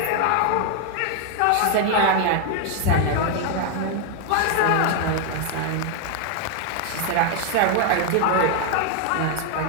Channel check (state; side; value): different; both; correlation 0.00